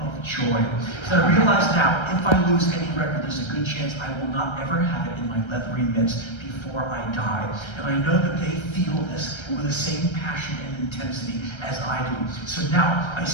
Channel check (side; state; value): right; late; 1.3 ms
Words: joy. Because I realize now, if I lose any record, there's a good chance I will not ever have it in my leathery mitts before I die. And I know that they feel this with the same passion and intensity as I do. So now I